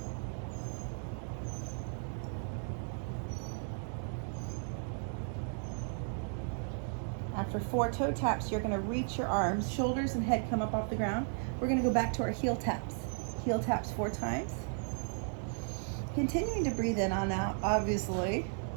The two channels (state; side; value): silent; left; 54 dB below the other